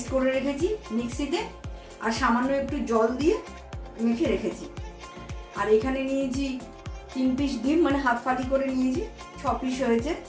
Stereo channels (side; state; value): both; identical; correlation 1.00